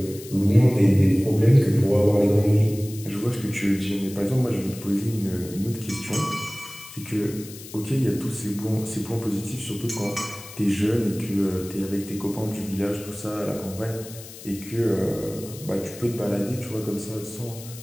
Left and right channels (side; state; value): left; noise; hiss, 16 dB below the sound